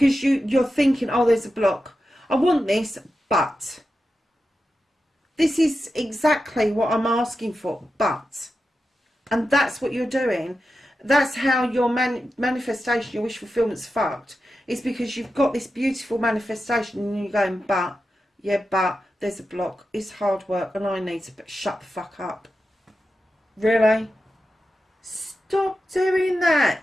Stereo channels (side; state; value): both; normal; correlation 0.91